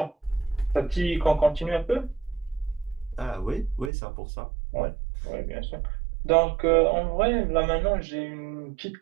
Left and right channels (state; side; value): drops out; left; at 3.9 s